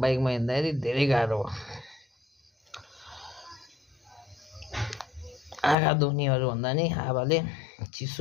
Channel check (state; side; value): drops out; right; at 5.8 s